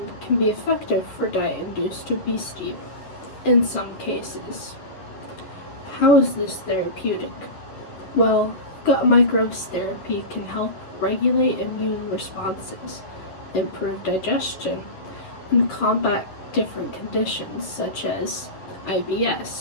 can be effective for diet-induced obesity in some cases. How is this therapeutic? Well, gut microbes therapy can help regulate immune responses, improve digestion, and combat different conditions such as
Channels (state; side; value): late; right; 11 ms